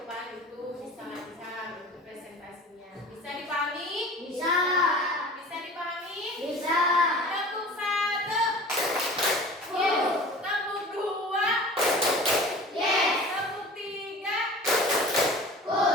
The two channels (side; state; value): both; normal; correlation 0.41